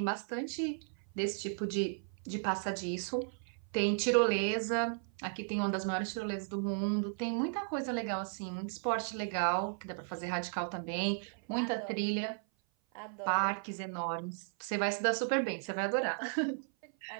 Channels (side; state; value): left; silent; 54 dB below the other